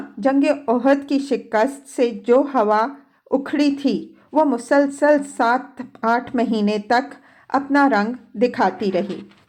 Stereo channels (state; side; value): identical; both; correlation 1.00